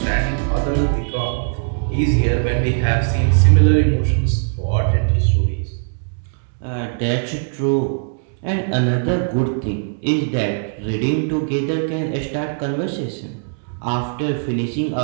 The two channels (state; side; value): silent; left; 66 dB below the other